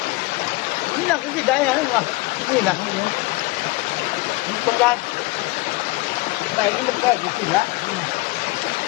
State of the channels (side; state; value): right; quieter; 22.2 dB